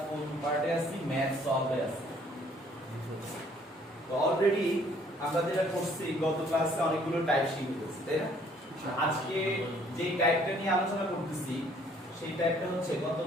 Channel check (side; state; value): both; normal; correlation 0.61